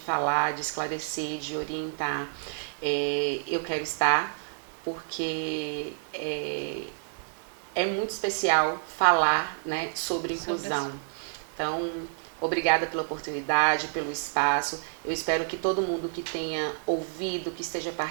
de esclarecer, de orientar, eu quero estar, porque é muito especial falar, né, sobre inclusão. Então, obrigada pela oportunidade, pelo espaço. Eu espero que todo mundo que tenha ouvido, que esteja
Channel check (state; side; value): silent; left; digital silence